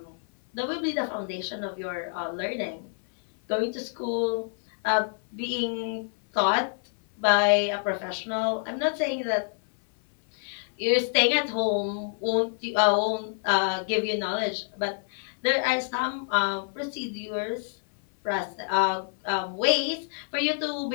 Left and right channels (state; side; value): silent; right; 60 dB below the other